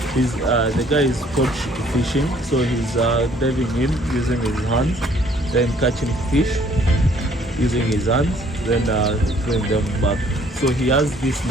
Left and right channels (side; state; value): both; normal; correlation 0.60